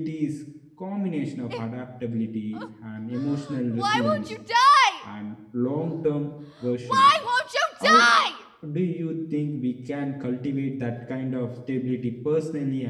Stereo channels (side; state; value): both; identical; correlation 1.00